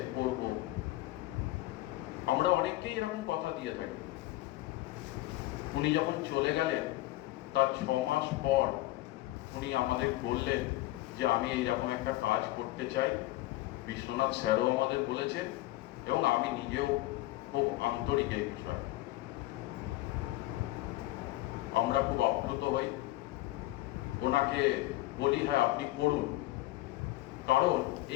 করব। আমরা অনেককেই এরকম কথা দিয়ে থাকি। উনি যখন চলে গেলেন তার 6 মাস পর উনি আমাদের বললেন যে আমি এইরকম একটা কাজ করতে চাই। বিশ্বনাথ স্যারও আমাদের বলেছেন এবং আমি নিজেও খুব আন্তরিক এই বিষয়ে। আমরা খুব আপ্লুত হই, ওনাকে বলি হ্যাঁ আপনি করুন, কারণ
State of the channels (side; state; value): right; quieter; 17.6 dB